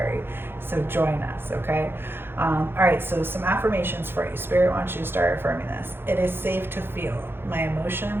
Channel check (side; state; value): left; late; 0.11 ms